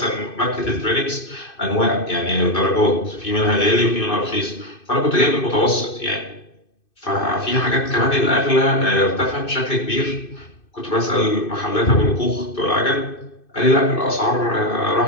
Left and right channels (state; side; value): late; right; 2.6 ms